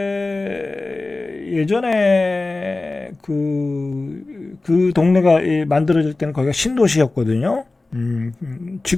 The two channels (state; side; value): quieter; right; 3.3 dB